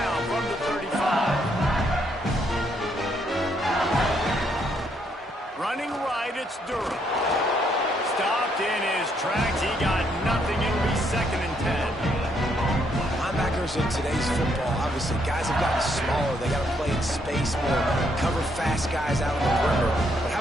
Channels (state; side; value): normal; both; correlation 0.73